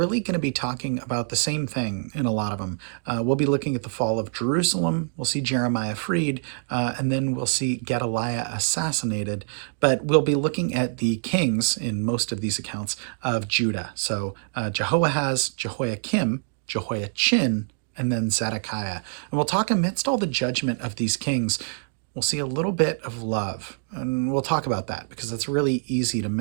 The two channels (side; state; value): left; silent; digital silence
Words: going to be talking about the same thing in a lot of them. We'll be looking at the fall of Jerusalem, we'll see Jeremiah freed, and then we'll see Gedaliah assassinated. But we'll be looking at the kings in most of these accounts of Judah. So Jehoahaz, Jehoiakim, Jehoiachin, and then Zedekiah. And we'll talk amidst all the judgment of these kings. We'll see a little bit of love, and we'll talk about that because that's really easy to